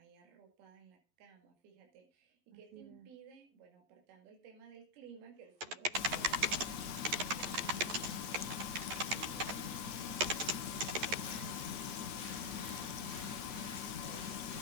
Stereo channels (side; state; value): left; late; 11 ms